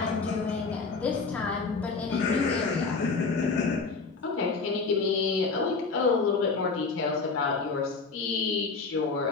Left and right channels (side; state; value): right; quieter; 4.4 dB